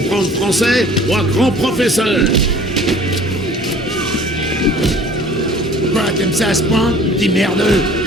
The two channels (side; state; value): both; normal; correlation 0.49